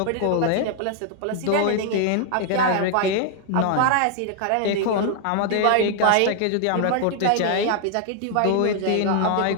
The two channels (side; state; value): both; different; correlation 0.00